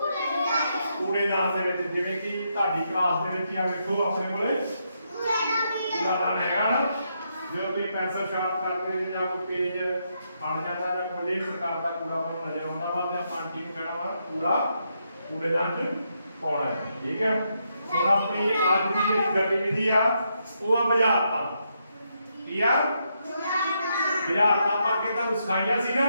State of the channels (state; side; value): inverted; both; correlation -0.79